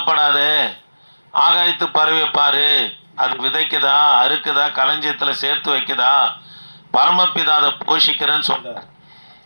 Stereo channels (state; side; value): inverted; both; correlation -1.00